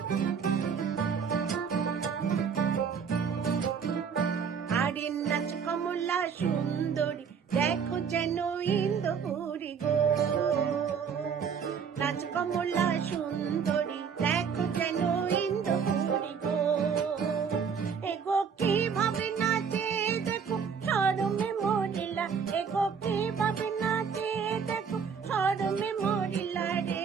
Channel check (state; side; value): quieter; left; 6.6 dB